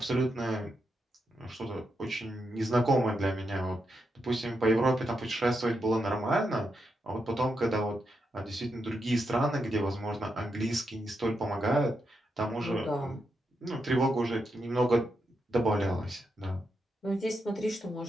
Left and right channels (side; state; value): both; normal; correlation 0.84